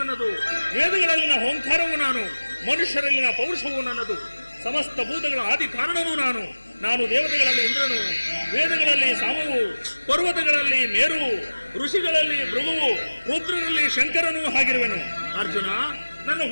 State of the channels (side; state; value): both; inverted; correlation -1.00